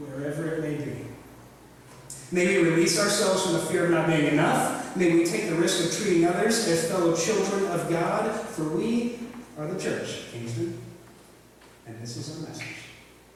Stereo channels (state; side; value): identical; both; correlation 1.00